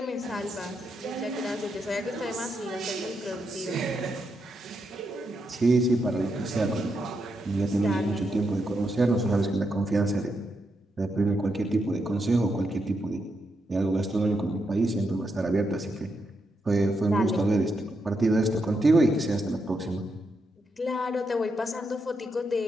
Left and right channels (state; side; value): normal; both; correlation 0.82